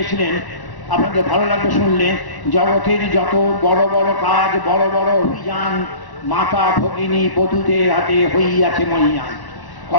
আপনাদের ভালো লাগবে শুনলে, জগতের যত বড় বড় কাজ, বড় বড় অভিযান, মাতা ভগিনী বধূদের হাতে হইয়াছে মহিয়ান।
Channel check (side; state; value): right; late; 1.1 ms